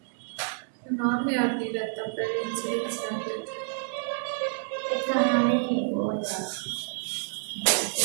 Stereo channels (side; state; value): left; silent; 59 dB below the other